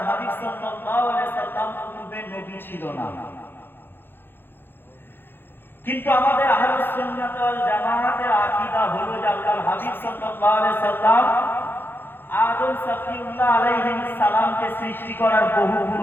হাবিব সাল্লাল্লাহু আলাইহি ওয়াসাল্লাম পূর্বে নবী ছিল না। কিন্তু আমাদের আহলুস সুন্নাত ওয়াল জামাতের আকীদা হলো যে আল্লাহর হাবিব সাল্লাল্লাহু আলাইহি ওয়াসাল্লাম আদম সফিউল্লাহ আলাইহিস সালামকে সৃষ্টি করার বহু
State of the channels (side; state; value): right; late; 0.10 ms